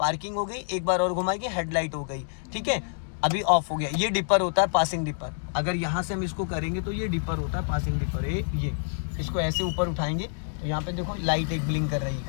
हो गई, एक बार और घुमाएंगे हेडलाइट हो गई, ठीक है। अभी ऑफ हो गया। ये डिपर होता है, पासिंग डिपर। अगर यहाँ से हम इसको करेंगे तो ये डिपर होता है, पासिंग डिपर। ये इसको ऐसे ऊपर उठाएंगे यहाँ पे देखो लाइट एक ब्लिंक कर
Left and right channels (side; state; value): right; silent; digital silence